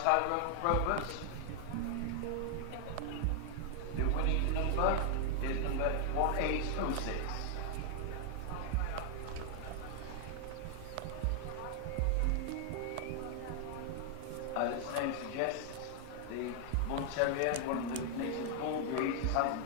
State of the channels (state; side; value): different; both; correlation 0.00